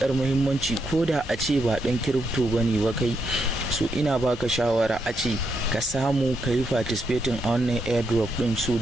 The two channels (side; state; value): both; normal; correlation 0.79